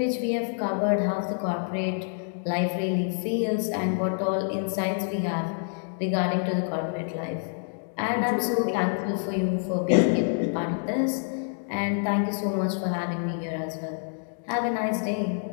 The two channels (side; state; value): right; silent; digital silence